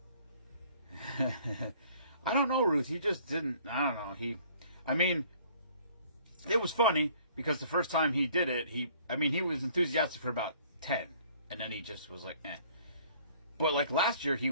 I don't know, Ruth. He just didn't. I don't know. It was funny because the first time he did it, he was enthusiastic for about 10. And then he just was like, eh. But like last year, he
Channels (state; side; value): inverted; both; correlation -0.57